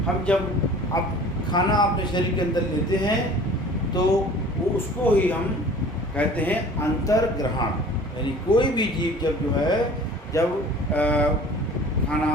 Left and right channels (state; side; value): normal; both; correlation 0.46